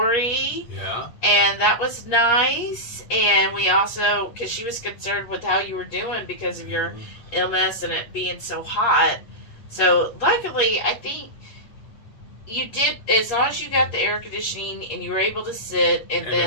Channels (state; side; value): late; right; 8.6 ms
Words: Yeah. and that was nice. And we also, because she was concerned with how you were doing because of your illness and it being so hot. So luckily, I think you did, as long as you got the air conditioning and you were able to sit, and And then